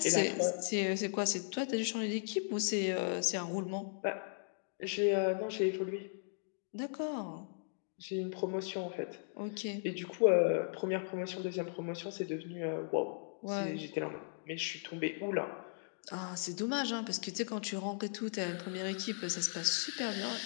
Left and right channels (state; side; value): silent; right; digital silence